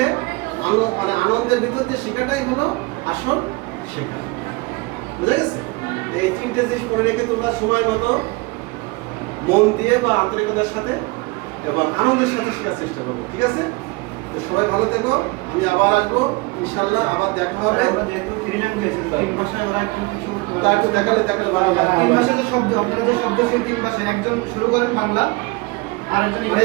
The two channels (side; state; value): left; quieter; 25.4 dB